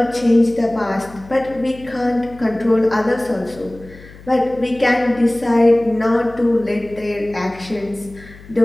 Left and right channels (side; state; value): left; noise; hum, 20 dB below the sound